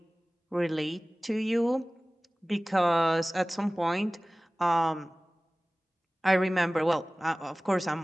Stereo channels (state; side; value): normal; both; correlation 0.98